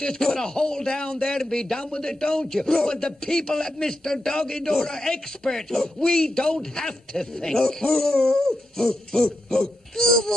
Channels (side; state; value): both; normal; correlation 0.87